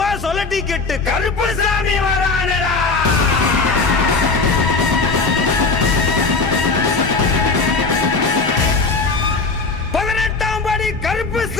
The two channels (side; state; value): right; quieter; 4.1 dB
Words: சொல்லட்டிக்கிட்டு கருப்புசாமி வரானடா.